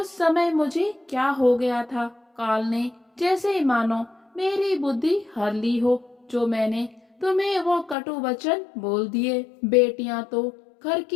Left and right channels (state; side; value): drops out; right; at 8.0 s